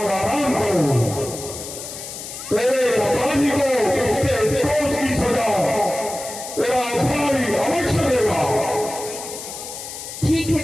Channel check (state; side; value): noise; left; hiss, 10 dB below the sound